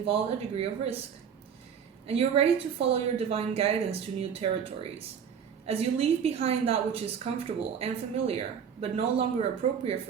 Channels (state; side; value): quieter; left; 7.5 dB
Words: a degree of risk. And you're ready to follow your divine guidance to new territories. As you leave behind that which is comfortable and familiar, but no longer appropriate